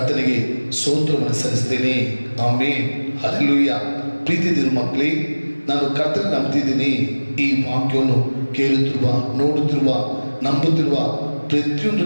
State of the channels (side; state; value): both; inverted; correlation -1.00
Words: ಸ್ತೋತ್ರವನ್ನು ಸಲ್ಲಿಸ್ತೇನೆ. ಆಮೆನ್. ಹಲ್ಲೆಲೂಯಾ. ಪ್ರೀತಿ ದೇವರ ಮಕ್ಕಳೇ, ನಾನು ಕರ್ತನ ನಂಬ್ತಿದ್ದೀನಿ. ಈ ವಾಕ್ಯವನ್ನು ಕೇಳುತ್ತಿರುವ, ನೋಡುತ್ತಿರುವ, ನಂಬುತ್ತಿರುವ ಪ್ರತಿಯೊಂದು